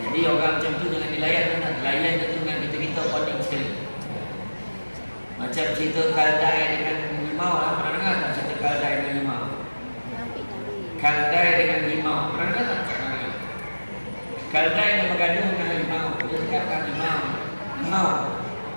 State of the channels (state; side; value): inverted; both; correlation -1.00